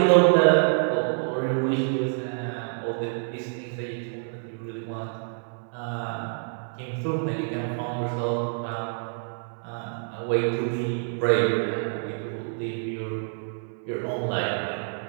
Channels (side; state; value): left; silent; 59 dB below the other